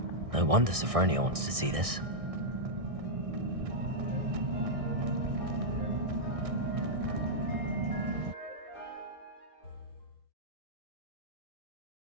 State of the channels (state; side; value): late; left; 1.6 ms